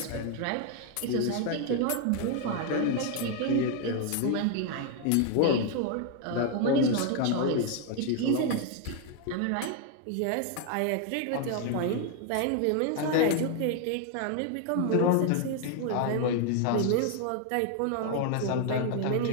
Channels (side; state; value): both; different; correlation 0.01